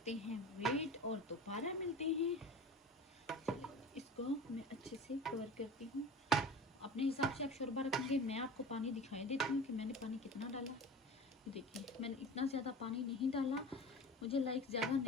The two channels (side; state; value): both; normal; correlation 0.35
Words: हैं वेट और दोबारा मिलते हैं। चलिए इसको मैं अच्छे से कवर करती हूँ। अपने हिसाब से आप शोरबा रखेंगे। मैं आपको पानी दिखाई देती हूँ कि मैंने पानी कितना डाला। देखिए मैंने इतना ज़्यादा पानी नहीं डाला, मुझे लाइक ज़्यादा